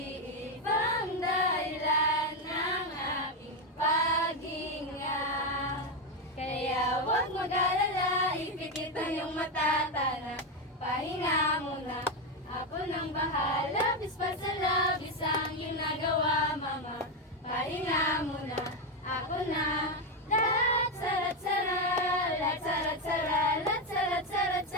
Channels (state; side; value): normal; both; correlation 0.08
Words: dahilan ng aking paghinga. Kaya huwag mag-alala, ipikit ang iyong mata, tara, pahinga muna. Ako nang bahala, bispa sa labis ang iyong nagawa, mama. Pahinga muna, ako na. Lat-sara-tsara, lat-sara-tsara,